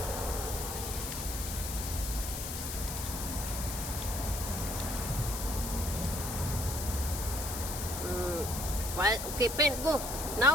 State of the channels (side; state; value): left; noise; hiss, 6 dB below the sound